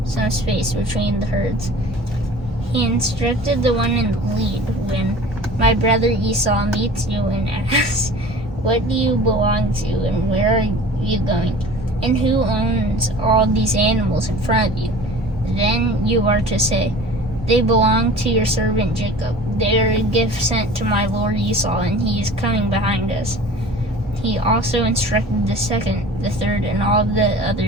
some space between the herds. He instructed the one in the lead, "When my brother Esau meets you and asks, 'What do you belong to, and where are you going, and who owns all these animals in front of you?' then you are to say, 'They belong to your servant Jacob. They are a gift sent to my lord Esau, and he is coming behind us.'" He also instructed the second, the third, and all of the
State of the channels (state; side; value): normal; both; correlation 0.42